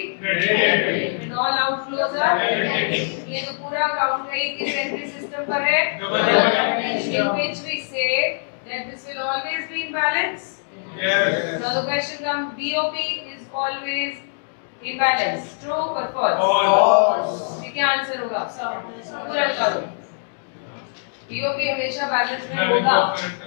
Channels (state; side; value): silent; right; digital silence